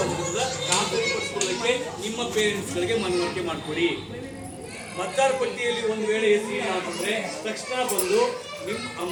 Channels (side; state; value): both; identical; correlation 1.00